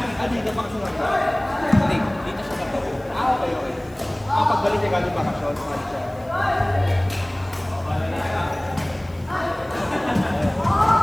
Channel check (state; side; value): noise; left; hiss, 29 dB below the sound